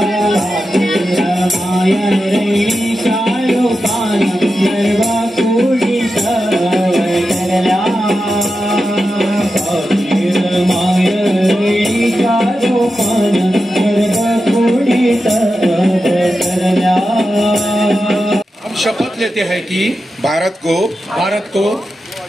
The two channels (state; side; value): normal; both; correlation 0.90